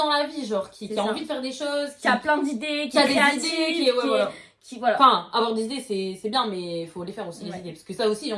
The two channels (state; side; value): identical; both; correlation 1.00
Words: la vie, genre qui C'est a ça. envie de faire des choses, qui a plein d'idées, qui a est des créatif, idées, qui est. Ouais, voilà. qui voilà. Enfin, avoir des idées, c'est bien, mais il faut les faire aussi, les Ouais. idées. Parce que ça aussi,